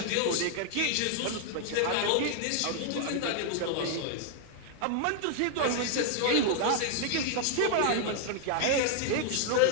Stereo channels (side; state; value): both; different; correlation 0.00